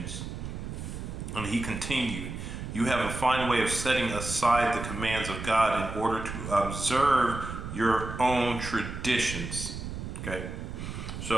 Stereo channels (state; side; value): noise; right; rumble, 7 dB below the sound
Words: And he continued, you have a fine way of setting aside the commands of God in order to observe your own traditions. Okay,